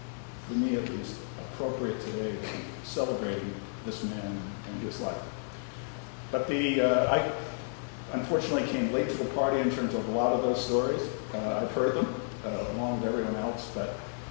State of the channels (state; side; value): silent; right; 57 dB below the other